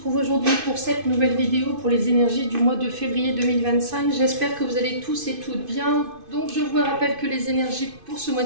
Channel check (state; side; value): late; left; 2.5 ms